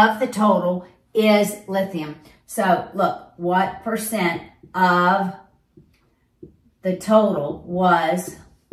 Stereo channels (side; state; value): both; identical; correlation 1.00